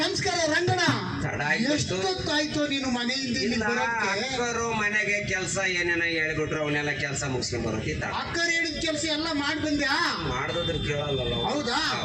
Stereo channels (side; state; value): both; identical; correlation 1.00